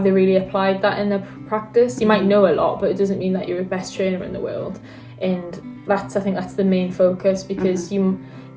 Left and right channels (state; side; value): identical; both; correlation 1.00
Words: they really applied that in their practice? You might know a lot, but it doesn't mean that you're the best trainer in the world. And I think that's the main focus, because you